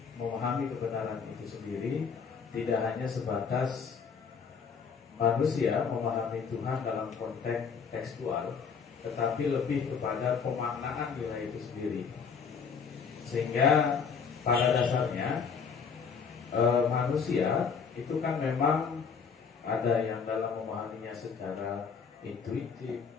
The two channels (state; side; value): quieter; right; 6.0 dB